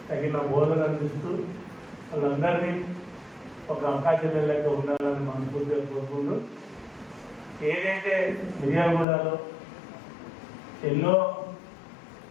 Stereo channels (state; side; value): drops out; right; at 9.1 s